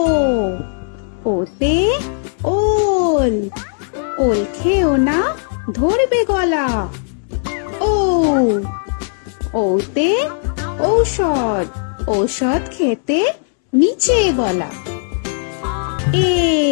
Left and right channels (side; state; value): right; silent; 65 dB below the other